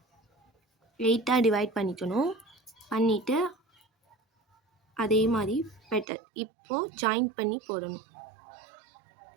எயிட்டாக டிவைட் பண்ணிக்கணும். பண்ணிவிட்டு அதே மாதிரி பெட்டல் இப்போது ஜாயின் பண்ணி போடணும்.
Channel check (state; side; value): drops out; left; at 6.1 s